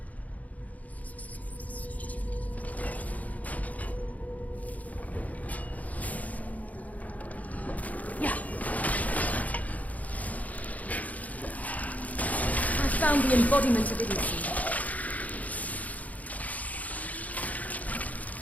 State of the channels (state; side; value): late; right; 0.074 ms